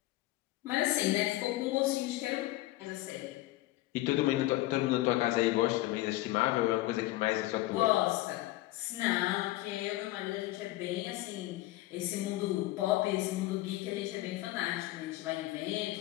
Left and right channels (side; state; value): right; quieter; 17.5 dB